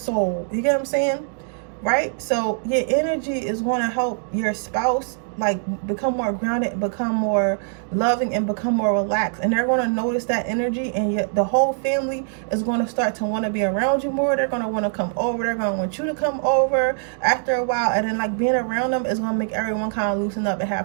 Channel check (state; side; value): silent; left; digital silence